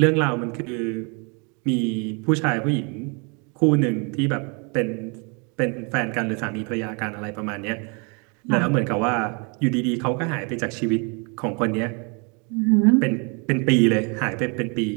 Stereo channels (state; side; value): quieter; left; 33.6 dB